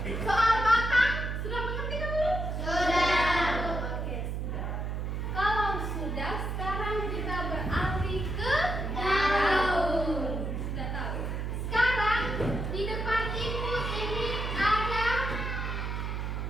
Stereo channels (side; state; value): right; noise; hum, 3 dB below the sound